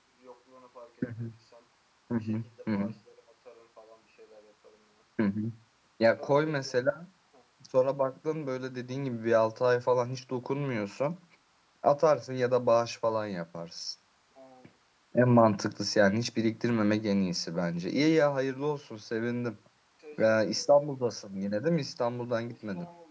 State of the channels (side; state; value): both; identical; correlation 1.00